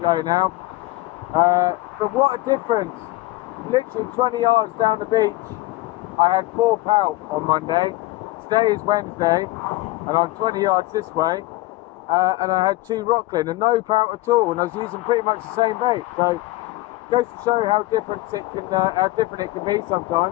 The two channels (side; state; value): right; quieter; 19.2 dB